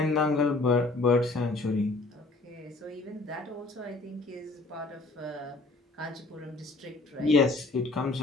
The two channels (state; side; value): quieter; right; 3.3 dB